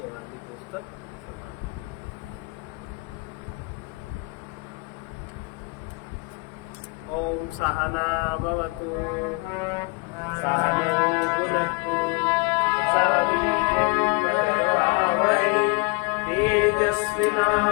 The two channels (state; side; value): quieter; right; 28.8 dB